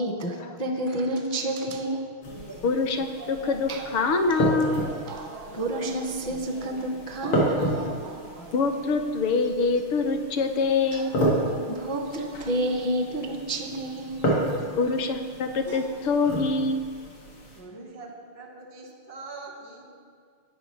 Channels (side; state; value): right; late; 6.4 ms